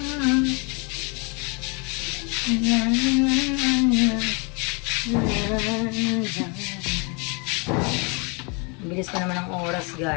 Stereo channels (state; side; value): quieter; right; 32.4 dB